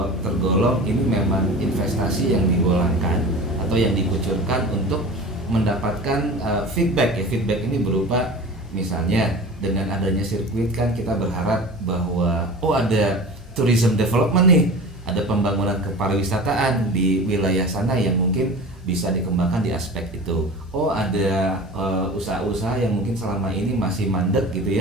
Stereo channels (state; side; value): normal; both; correlation 0.36